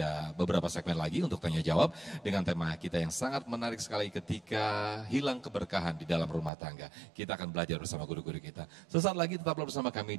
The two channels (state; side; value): drops out; left; at 6.5 s